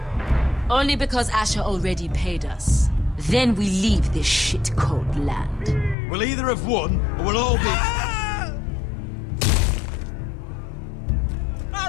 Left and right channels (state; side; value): drops out; right; at 6.0 s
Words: Only because Asher already paid us. Then we leave this shit-cold land. We'll either have won, or we'll all be...